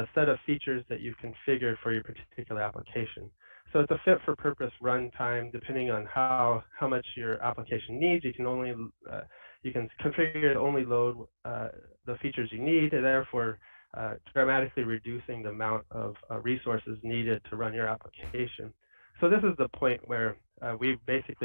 set of features that you've configured for your particular application. So it's a fit for purpose runtime. Depending on how much your application needs, you can only you can configure to only load the features you need, and therefore dramatically reducing the amount of resources needed to run your application. So this is the point where we've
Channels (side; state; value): both; inverted; correlation -1.00